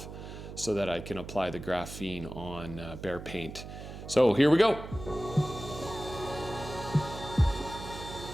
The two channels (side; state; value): right; noise; hum, 11 dB below the sound